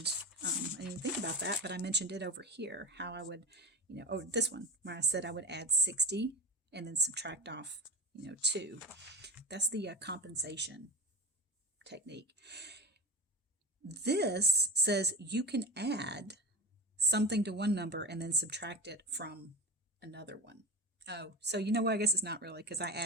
I didn't think about that, but I mentioned it over here, how I would, this one, where I said I would add 60 and then subtract off, 2. That's the compensation technique. This says you can add something to one number and then subtract it from another one. Oh, so I guess it's not really, because I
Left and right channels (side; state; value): both; normal; correlation 0.25